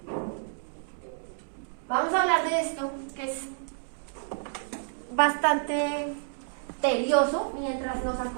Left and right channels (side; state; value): left; silent; digital silence